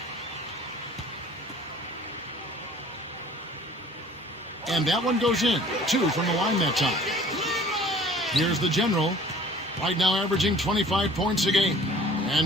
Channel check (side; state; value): both; normal; correlation 0.50